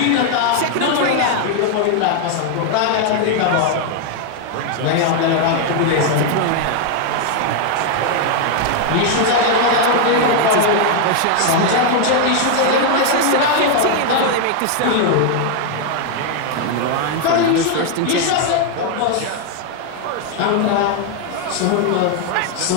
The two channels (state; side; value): different; both; correlation 0.00